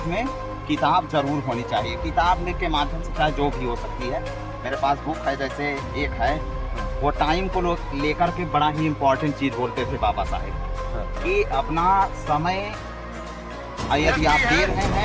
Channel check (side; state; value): both; identical; correlation 1.00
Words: में किताब जरूर होनी चाहिए। किताब के माध्यम से चाहे जो भी हो सकती है। मेरे पास बुक है, जैसे एक है, वो टाइम को लेकर के बड़ा ही इम्पोर्टेंट चीज़ बोलते थे बाबा साहेब कि अपना समय यदि आप दे रहे